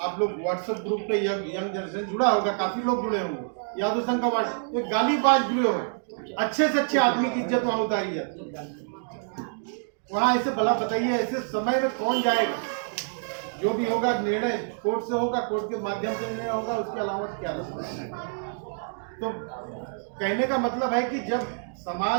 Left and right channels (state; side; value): silent; left; digital silence